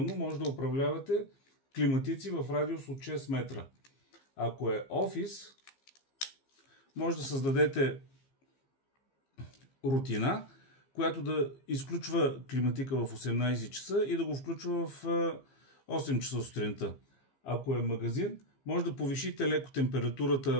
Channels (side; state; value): right; late; 15 ms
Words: може да управлявате климатици в радиус от 6 метра. Ако е офис, може да създадете рутина, която да изключва климатика в 18 часа и да го включва в 8 часа сутринта. Ако е магазин, може да повишите леко